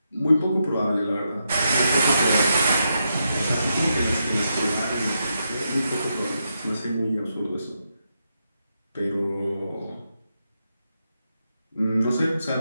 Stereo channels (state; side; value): inverted; both; correlation -0.83